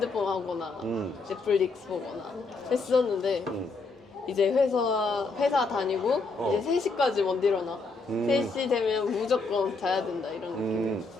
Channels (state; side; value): quieter; right; 3.8 dB